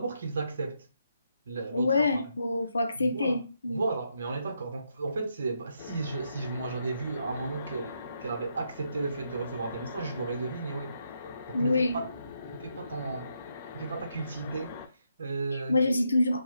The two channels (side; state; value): both; inverted; correlation -0.79